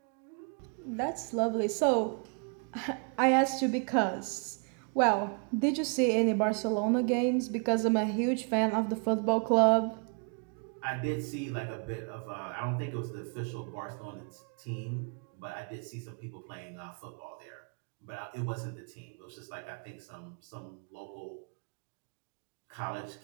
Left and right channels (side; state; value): left; quieter; 38.9 dB